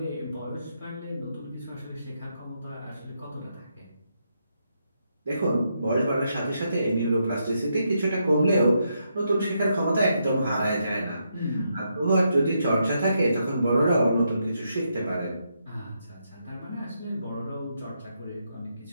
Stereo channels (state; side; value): inverted; both; correlation -0.80